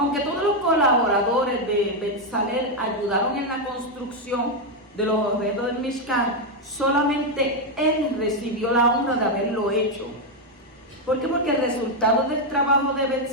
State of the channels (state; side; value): normal; both; correlation 0.03